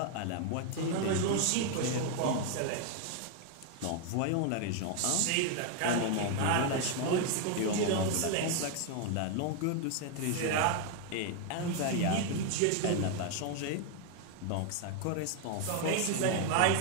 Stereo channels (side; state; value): both; different; correlation 0.00